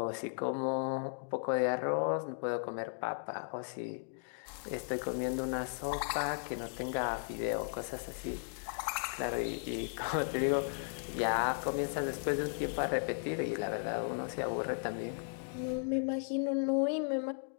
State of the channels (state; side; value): silent; right; digital silence